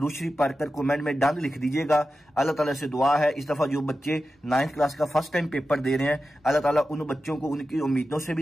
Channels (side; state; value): both; normal; correlation 0.92